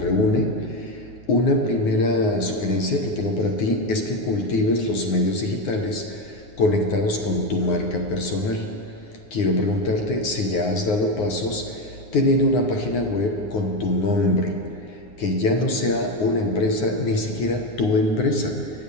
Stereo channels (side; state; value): right; late; 9.6 ms